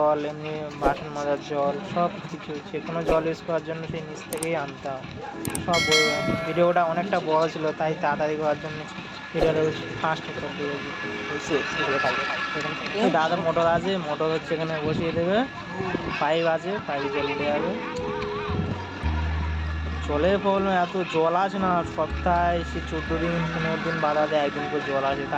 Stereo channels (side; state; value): both; identical; correlation 1.00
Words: এমনি বাসন মাজার জল, সব কিছু যে কোনো জল ইউজ করার জন্য সেই নিচ থেকেই আনতে হয় সব। ভিডিওটা অনেকটা বড় ছিল, তাই তাড়াতাড়ি করার জন্য ভিডিওটা ফাস্ট করে দিয়েছি। দাদা মোটর আছে, মোটর হচ্ছে এখানে বসিয়ে দেবে, পাইপ আছে, পাইপ জল উঠে যাবে। জলের প্রবলেম, এত জল আছে না, সপ্তাহে সে 14 দিন 15 দিন বাদে একদিন করে জল আসে,